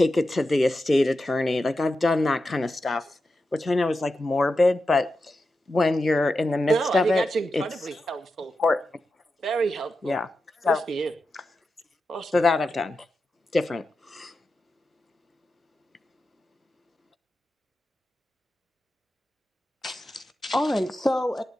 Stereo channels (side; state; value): both; normal; correlation 0.90